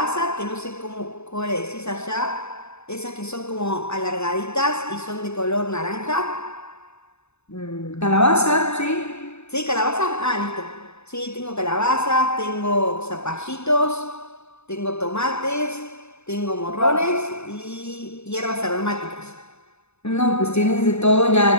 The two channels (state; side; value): late; right; 0.81 ms